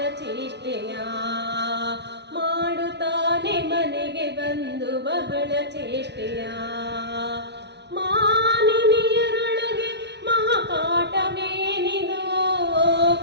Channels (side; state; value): left; late; 0.50 ms